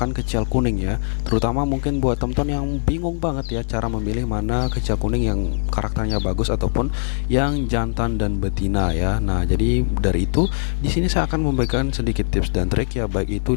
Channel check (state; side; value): silent; right; 65 dB below the other